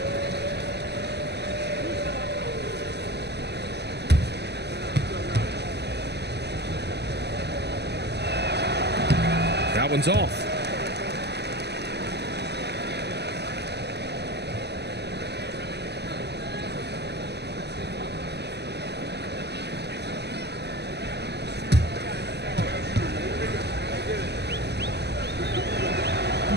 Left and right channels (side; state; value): left; late; 0.49 ms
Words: That one's off.